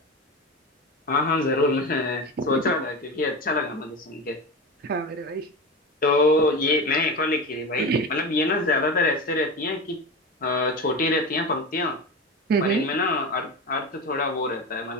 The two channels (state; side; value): normal; both; correlation 0.24